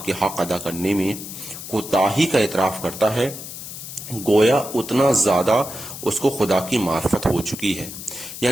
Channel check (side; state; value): left; noise; hiss, 11 dB below the sound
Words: کے حق ادا کرنے میں کوتاہی کا اعتراف کرتا ہے، گویا اتنا زیادہ اس کو خدا کی معرفت ہو چکی ہے۔